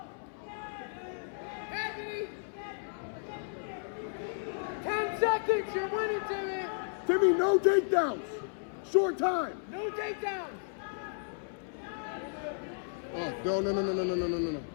Anthony! 10 seconds! thinks you're winning, Timmy. Timmy, no takedowns. Short time. No takedowns. Oh, no.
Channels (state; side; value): silent; right; 55 dB below the other